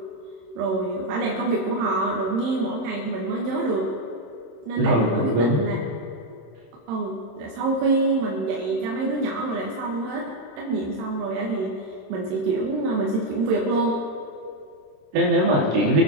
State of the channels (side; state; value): left; late; 26 ms